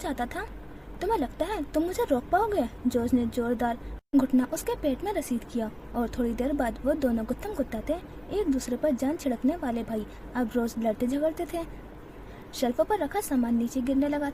था। तुम्हें लगता है तुम मुझे रोक पाओगे? जॉर्ज ने जोरदार घुटना उसके पेट में रसीद किया और थोड़ी देर बाद वो दोनों गुत्थम गुत्ता थे। एक दूसरे पर जान छिड़कने वाले भाई अब रोज लड़ते झगड़ते थे। शेल्फों पर रखा सामान नीचे गिरने लगा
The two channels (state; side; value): identical; both; correlation 1.00